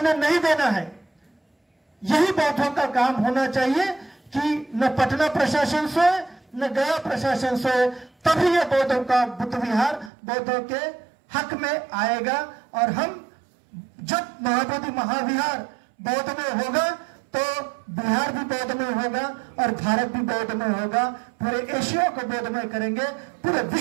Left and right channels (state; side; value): drops out; left; at 10.1 s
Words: नहीं देना है। यही बौद्धों का काम होना चाहिए कि न पटना प्रशासन सोए न गया प्रशासन सोए, तभी ये बौद्धों का बुद्ध विहार बौद्धों के हक में आएगा। और हम जब महाबोधि महाविहार बौद्धमय होगा तो बिहार भी बौद्धमय होगा और भारत भी बौद्धमय होगा। पूरे एशिया को बौद्धमय करेंगे, पूरे